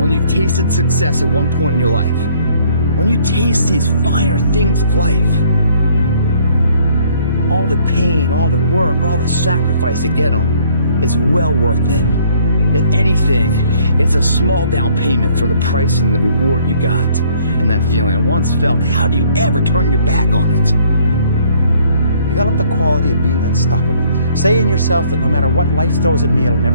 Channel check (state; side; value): inverted; both; correlation -0.61